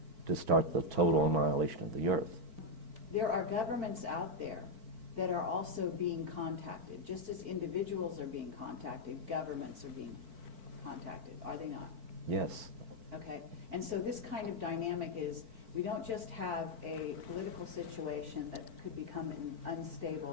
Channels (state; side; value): late; left; 4.5 ms